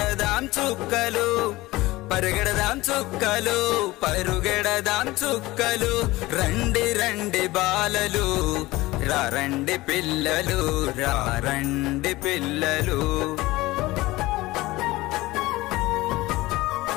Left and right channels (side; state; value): right; quieter; 19.4 dB